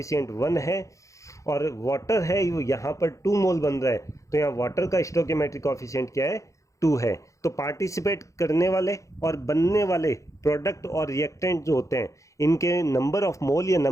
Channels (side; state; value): right; late; 0.15 ms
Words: 1 है। और वाटर है वो यहाँ पर 2 मोल बन रहा है तो यहाँ वाटर का स्टोकियोमेट्रिक कॉफिशिएंट क्या है, 2 है। तो पार्टिसिपेट करने वाले और बनने वाले प्रोडक्ट और रिएक्टेंट जो होते हैं इनके नंबर ऑफ मोल या